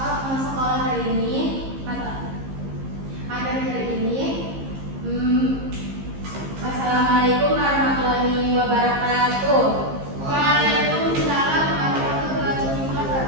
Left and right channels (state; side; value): late; left; 15 ms